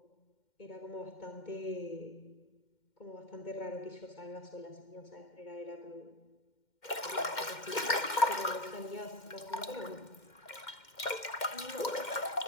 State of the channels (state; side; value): late; right; 2.1 ms